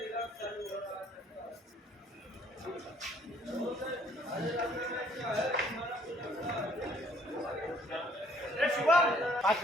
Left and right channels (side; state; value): both; normal; correlation 0.62